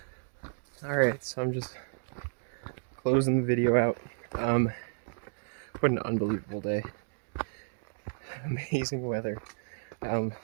Alright, so I'm just closing the video out. What an unbelievable day. Amazing weather.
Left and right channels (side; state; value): left; silent; digital silence